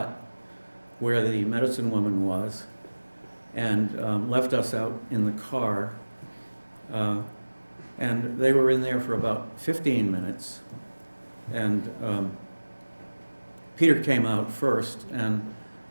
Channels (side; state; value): both; inverted; correlation -1.00